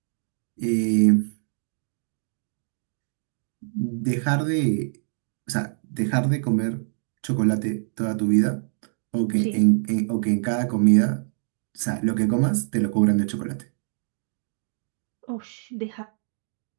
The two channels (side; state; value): left; silent; digital silence